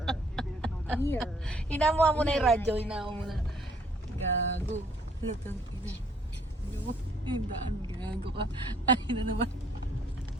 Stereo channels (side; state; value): both; normal; correlation 0.62